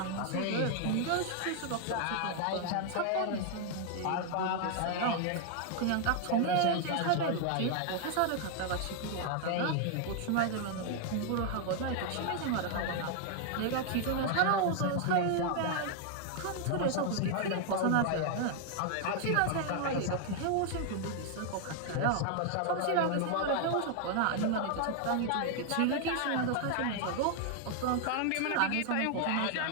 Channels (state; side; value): different; both; correlation 0.00